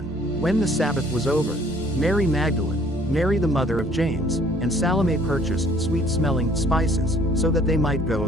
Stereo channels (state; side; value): noise; right; rumble, 21 dB below the sound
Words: When the Sabbath was over, Mary Magdalene, Mary the mother of James, and Salome purchased sweet-smelling spices, so that they might go